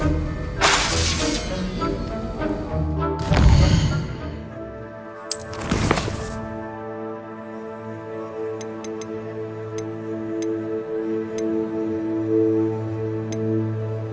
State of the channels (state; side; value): identical; both; correlation 1.00